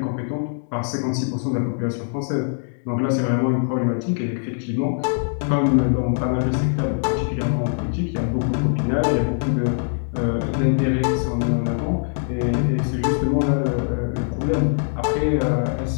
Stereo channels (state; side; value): silent; right; 64 dB below the other